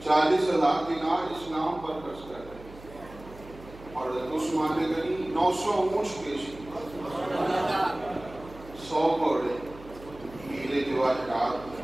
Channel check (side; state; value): right; noise; hum, 18 dB below the sound